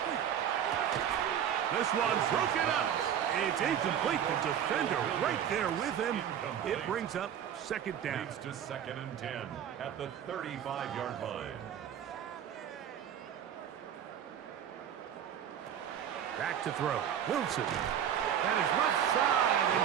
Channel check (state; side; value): quieter; left; 9.3 dB